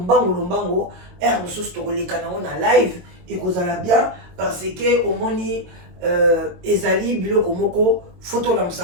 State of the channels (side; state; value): left; late; 22 ms